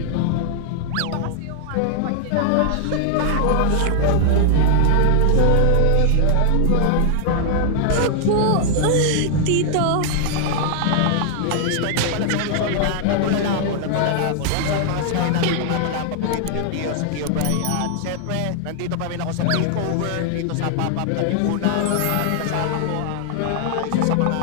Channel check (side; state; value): both; different; correlation 0.00